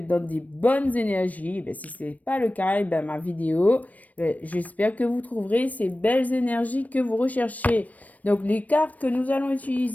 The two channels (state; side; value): late; right; 0.072 ms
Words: dans des bonnes énergies. Si ce n'est pas le cas, ma vidéo, j'espère que vous trouverez ces belles énergies que vous recherchez. Donc, les cartes que nous allons